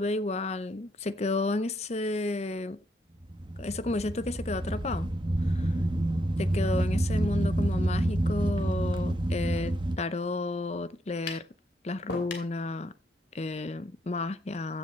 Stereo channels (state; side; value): normal; both; correlation 0.76